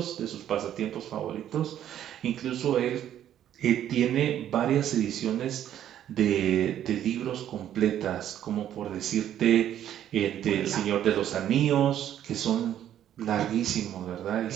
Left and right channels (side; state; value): left; quieter; 10.9 dB